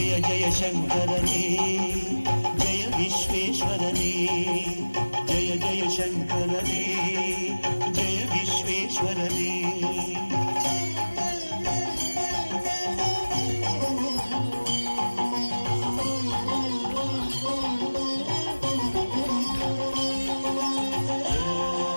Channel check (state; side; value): inverted; both; correlation -1.00